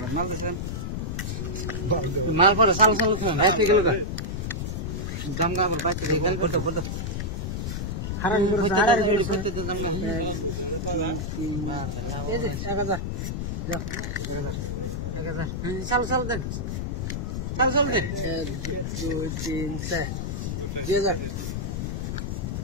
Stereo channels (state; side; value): noise; left; rumble, 3 dB below the sound